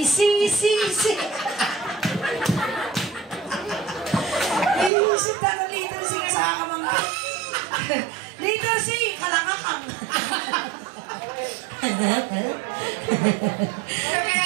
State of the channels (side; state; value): left; drops out; at 4.9 s